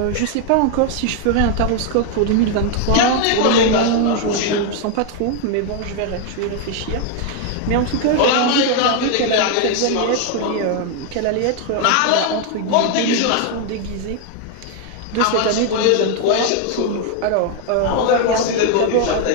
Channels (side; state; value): both; different; correlation 0.01